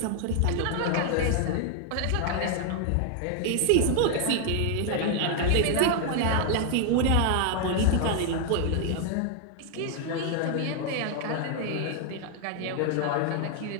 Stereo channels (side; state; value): both; different; correlation 0.00